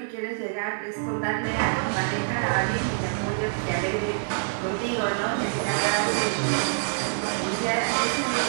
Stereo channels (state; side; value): silent; left; digital silence